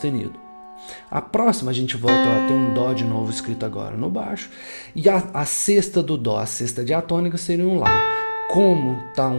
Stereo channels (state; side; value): inverted; both; correlation -1.00